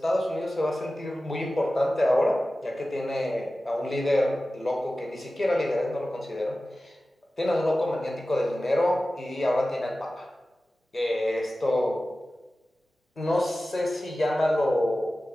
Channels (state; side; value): normal; both; correlation 0.96